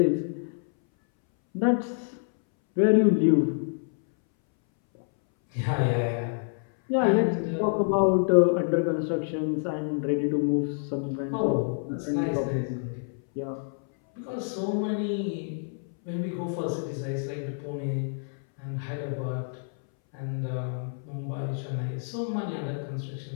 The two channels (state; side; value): silent; right; 60 dB below the other